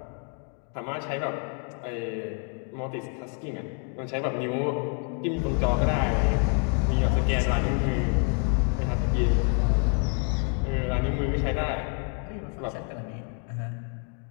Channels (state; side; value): quieter; right; 38.7 dB